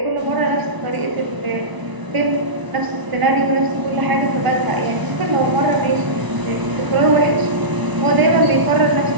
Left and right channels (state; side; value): late; left; 1.0 ms